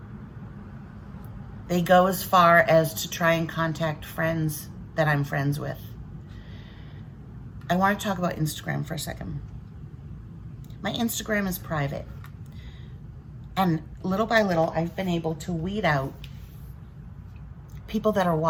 They go as far as to try and contact friends that I'm friends with. I want to talk about Instagram for a second. My Instagram is private. And little by little, I've been able to weed out people that are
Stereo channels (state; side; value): identical; both; correlation 1.00